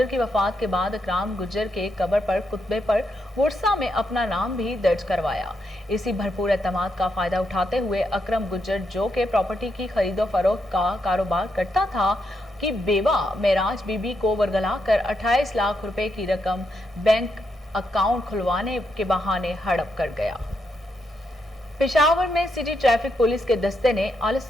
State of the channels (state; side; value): normal; both; correlation 0.81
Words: की वफात के बाद अकराम गुज्जर के कब्र पर कुतबे पर वर्सा में अपना नाम भी दर्ज करवाया। इसी भरपूर एतमाद का फायदा उठाते हुए अकरम गुज्जर, जो के प्रॉपर्टी की खरीदो फरोख्त का कारोबार करता था, कि बेवा मेराज बीबी को वरगला कर 28 लाख रुपए की रकम बैंक अकाउंट खुलवाने के बहाने हड़प कर गया। पेशावर में सिटी ट्रैफिक पुलिस के दस्ते ने अल